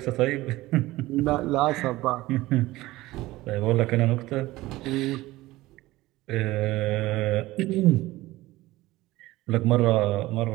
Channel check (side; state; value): left; quieter; 18.2 dB